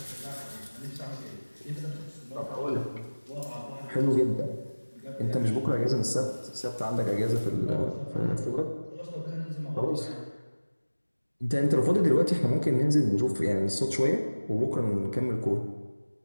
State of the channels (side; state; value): both; inverted; correlation -1.00